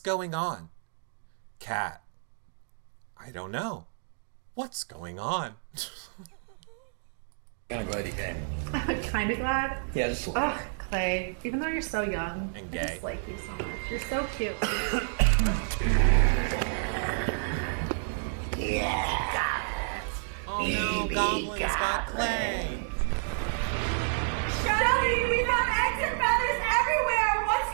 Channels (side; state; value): left; silent; digital silence